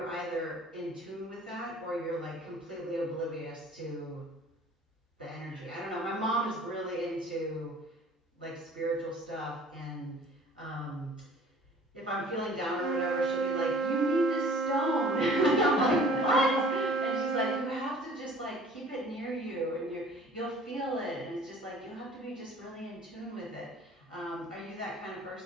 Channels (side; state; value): both; normal; correlation 0.49